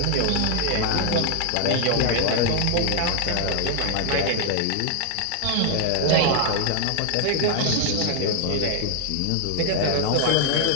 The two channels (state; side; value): different; both; correlation 0.00